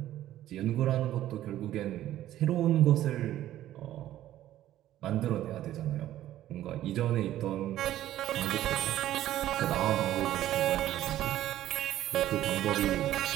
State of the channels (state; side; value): quieter; left; 13.2 dB